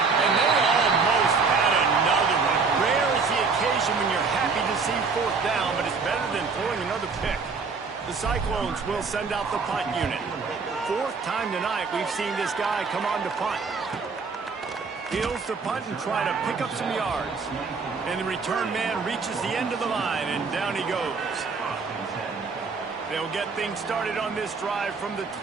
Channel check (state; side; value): quieter; left; 4.8 dB